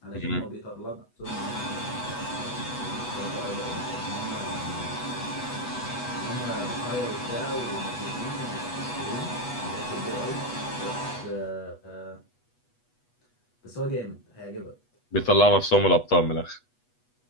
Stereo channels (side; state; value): right; late; 8.2 ms